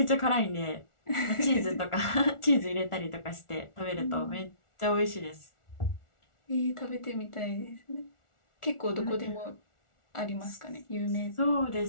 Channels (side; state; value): right; late; 1.4 ms